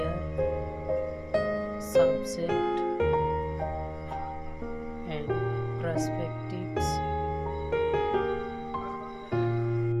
subject and perspectives.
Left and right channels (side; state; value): both; identical; correlation 1.00